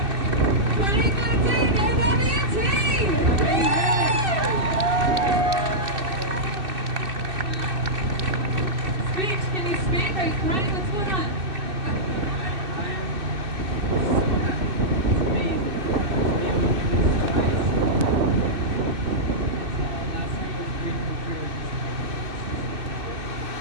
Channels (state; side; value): late; left; 2.6 ms